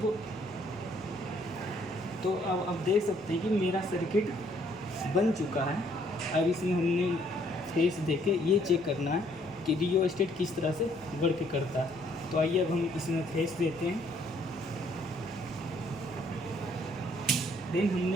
तो अब देख सकते हैं कि मेरा सर्किट बन चुका है। अब इसमें हमने फेस देके ये चेक करना है कि डीओ स्टेट किस तरह से वर्क करता है। तो आइए अब हम इसमें फेस देते हैं। देन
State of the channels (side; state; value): both; normal; correlation 0.66